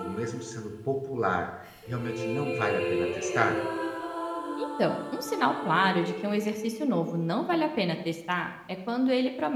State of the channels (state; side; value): identical; both; correlation 1.00